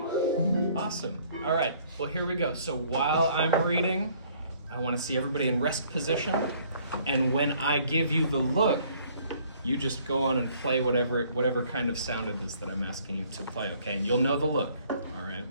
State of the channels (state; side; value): inverted; both; correlation -0.60